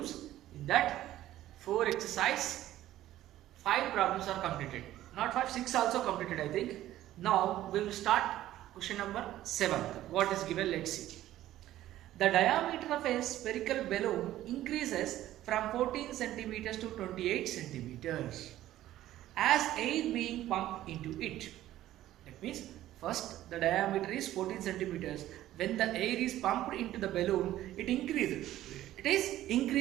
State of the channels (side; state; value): left; quieter; 13.9 dB